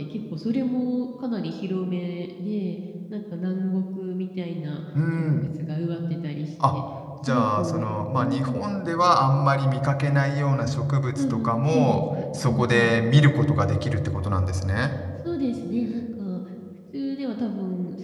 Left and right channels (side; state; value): both; identical; correlation 1.00